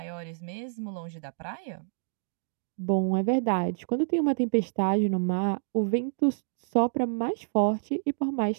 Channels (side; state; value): left; silent; digital silence